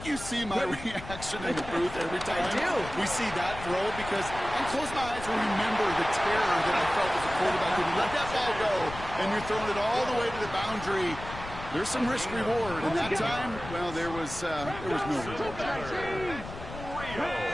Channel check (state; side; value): noise; left; rumble, 12 dB below the sound